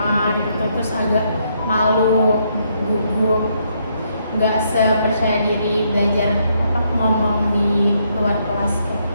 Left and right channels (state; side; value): inverted; both; correlation -0.74